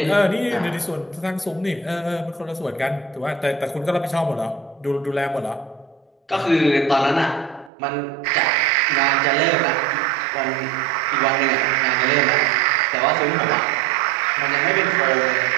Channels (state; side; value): drops out; left; at 7.7 s